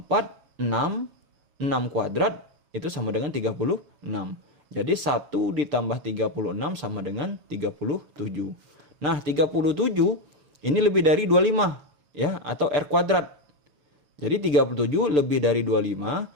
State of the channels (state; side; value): late; left; 6.8 ms